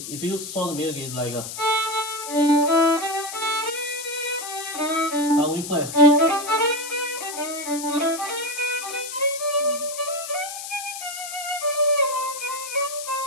If you saw the music, it's like a. We play.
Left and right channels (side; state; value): left; noise; hiss, 8 dB below the sound